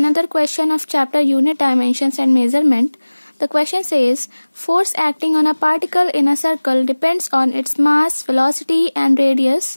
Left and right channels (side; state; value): both; inverted; correlation -1.00